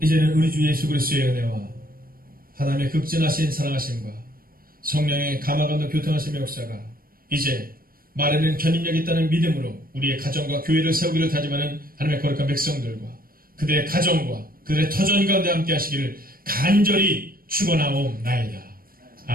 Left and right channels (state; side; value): late; left; 0.42 ms